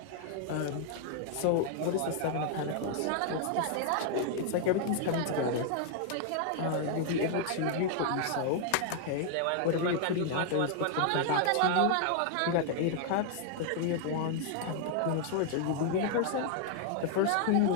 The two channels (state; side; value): different; both; correlation 0.00